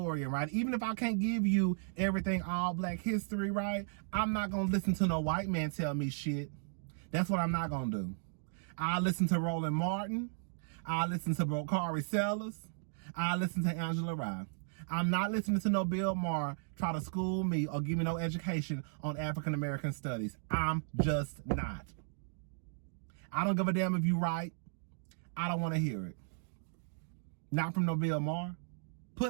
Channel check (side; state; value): left; silent; digital silence